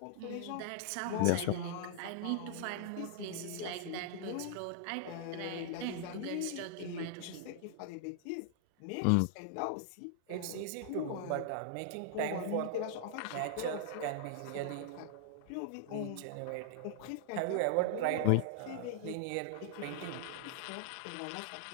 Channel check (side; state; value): both; different; correlation -0.01